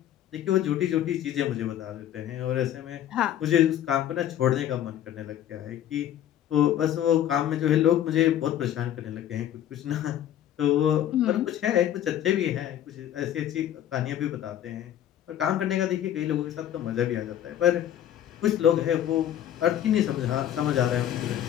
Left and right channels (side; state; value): right; quieter; 11.1 dB